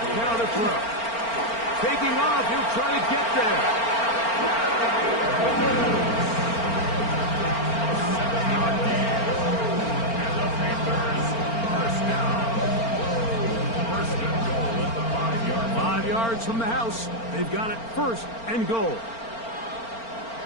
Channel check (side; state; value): right; late; 4.4 ms